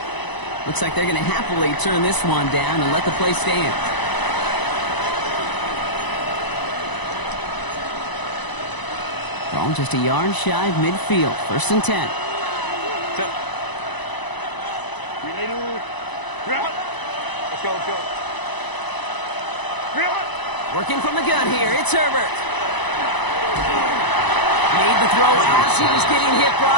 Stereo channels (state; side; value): late; right; 1.0 ms